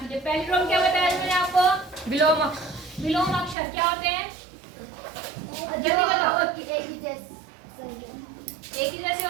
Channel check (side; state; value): left; drops out; at 3.6 s